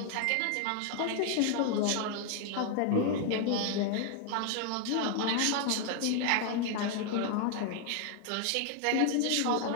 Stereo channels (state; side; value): different; both; correlation 0.00